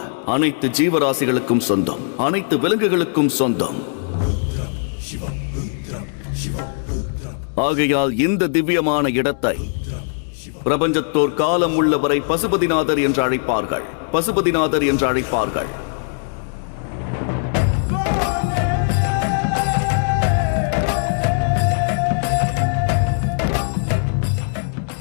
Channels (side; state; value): right; silent; 66 dB below the other